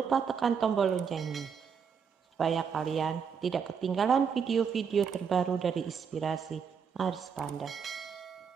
tekan tombol loncengnya, supaya kalian tidak ketinggalan video-video terbaru dari inspirasi Aris Panda.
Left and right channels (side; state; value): left; quieter; 6.6 dB